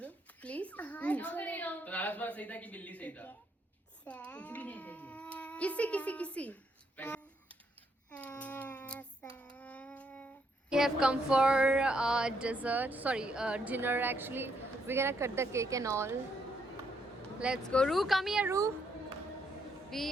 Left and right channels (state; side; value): normal; both; correlation 0.74